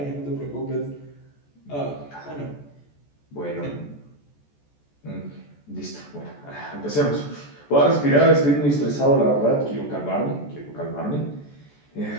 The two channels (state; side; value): late; right; 14 ms